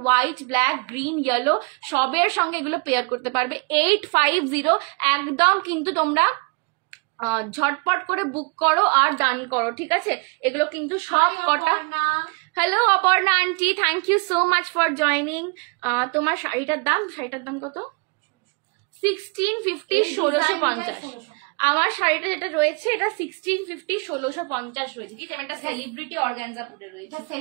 হোয়াইট, ব্ল্যাক, গ্রিন, ইয়েলো সবের সঙ্গে এগুলো পেয়ার করতে পারবে। 850 একদম কিন্তু তোমরা ঝটপট করে বুক করো আর ডান করো। ঠিক আছে, এগুলো কিন্তু সব কটা। Hello Aparna aunty, thank you so much for joining. তোমার শাড়িটার দাম কত? 1650, 1650। আমার শাড়িটা যেটা রয়েছে এটা 1650, 1650 রয়েছে। ঠিক আছে, এটা সেলিব্রিটি অর্গানজা পরে রয়েছে,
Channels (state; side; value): quieter; left; 31.7 dB